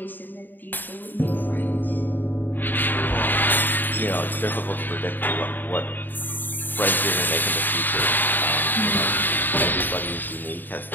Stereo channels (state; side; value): late; right; 0.091 ms